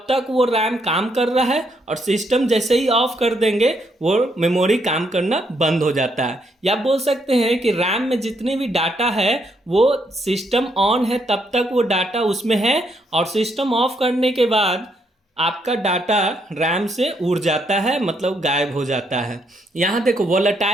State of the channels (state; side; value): normal; both; correlation 0.75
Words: तक वो रैम काम कर रहा है, और सिस्टम जैसे ही ऑफ कर देंगे वो मेमोरी काम करना बंद हो जाता है। या बोल सकते हैं कि रैम में जितने भी डाटा है वो सिस्टम ऑन है तब तक वो डाटा उसमें है, और सिस्टम ऑफ करने के बाद आपका डाटा रैम से उड़ जाता है, मतलब गायब हो जाता है। यहाँ देखो